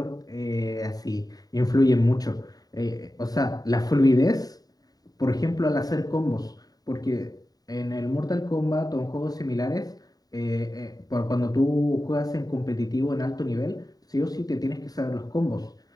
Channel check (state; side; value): late; right; 0.18 ms